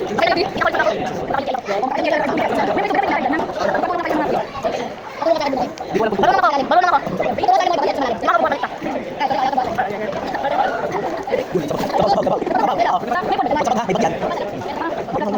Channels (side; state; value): both; identical; correlation 1.00